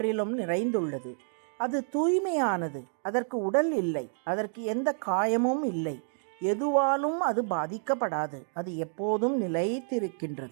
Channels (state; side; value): silent; left; 58 dB below the other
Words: நிறைந்துள்ளது. அது தூய்மையானது. அதற்கு உடல் இல்லை. அதற்கு எந்த காயமும் இல்லை. எதுவாலும் அது பாதிக்கப்படாது. அது எப்போதும்